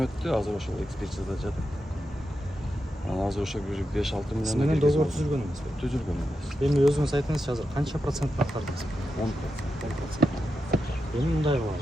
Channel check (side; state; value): both; normal; correlation 0.88